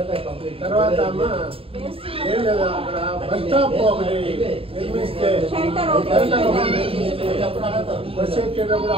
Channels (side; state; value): left; late; 0.27 ms